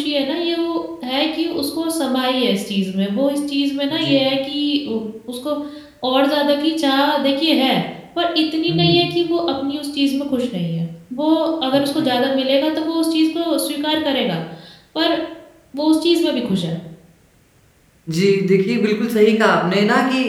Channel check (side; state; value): both; identical; correlation 1.00